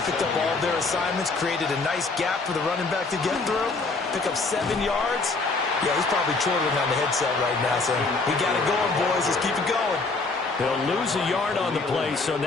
picked up all of their assignments, created a nice gap for the running back to get through, pick up 7 yards. Yeah, he's probably chortling on the headset right now saying, we got it going, boys. Let's keep it going. They'll lose a yard on the play, so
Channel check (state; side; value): quieter; right; 3.8 dB